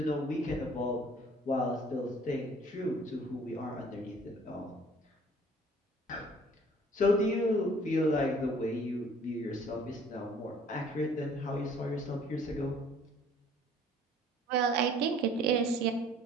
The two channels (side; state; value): both; normal; correlation 0.54